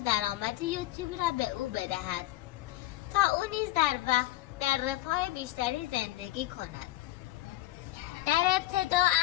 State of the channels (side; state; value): right; quieter; 16.7 dB